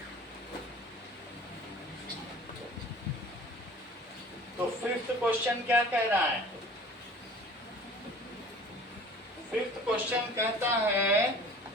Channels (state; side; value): normal; both; correlation 0.46